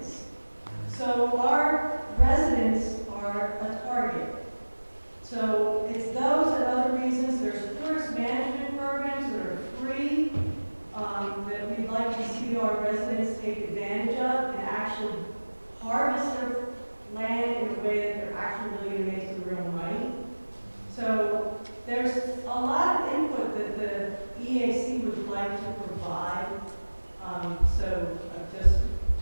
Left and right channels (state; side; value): inverted; both; correlation -1.00